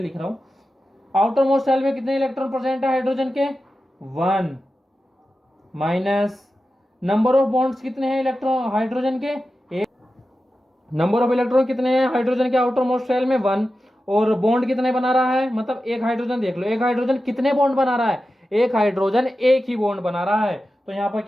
रहा हूं। आउटर मोस्ट शेल में कितने इलेक्ट्रॉन प्रेजेंट है हाइड्रोजन के, 1 माइनस नंबर ऑफ बॉन्ड्स कितने हैं इलेक्ट्रॉन हाइड्रोजन के, नंबर ऑफ इलेक्ट्रॉन कितने हैं हाइड्रोजन के आउटर मोस्ट शेल में 1, और बॉन्ड कितने बना रहा है, मतलब एक हाइड्रोजन देख लो, एक हाइड्रोजन कितने बॉन्ड बना रहा है, एक हाइड्रोजन एक ही बॉन्ड बना रहा है, तो यहां पर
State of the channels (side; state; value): both; normal; correlation 0.92